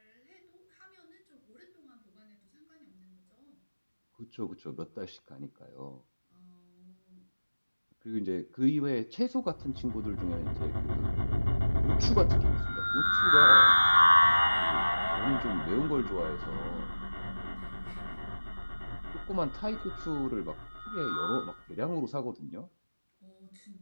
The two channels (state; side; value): inverted; both; correlation -1.00